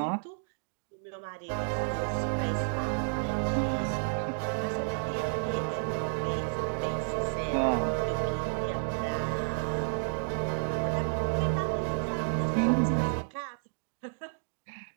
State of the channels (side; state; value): left; silent; digital silence